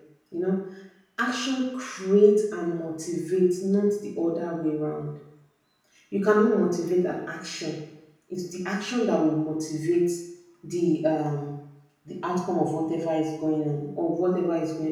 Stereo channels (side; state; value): both; identical; correlation 1.00